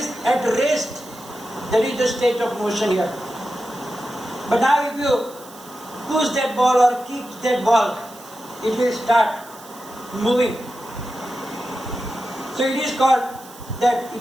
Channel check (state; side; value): noise; right; hiss, 20 dB below the sound